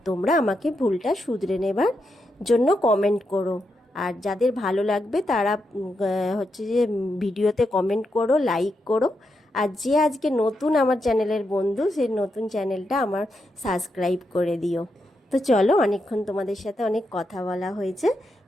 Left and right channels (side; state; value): both; normal; correlation 0.84